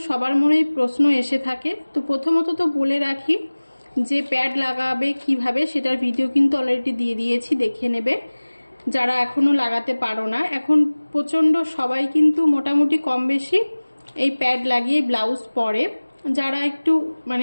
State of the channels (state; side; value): inverted; both; correlation -1.00